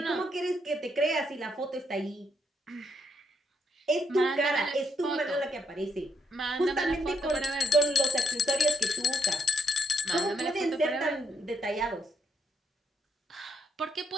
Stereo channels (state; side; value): normal; both; correlation 0.76